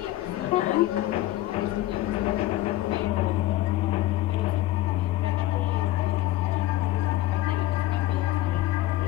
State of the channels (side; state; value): right; quieter; 15.6 dB